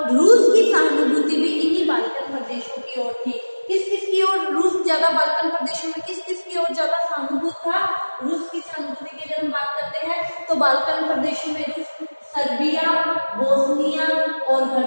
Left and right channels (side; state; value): both; inverted; correlation -1.00